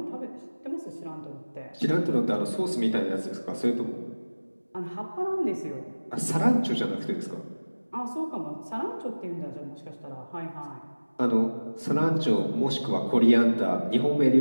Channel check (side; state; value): both; inverted; correlation -1.00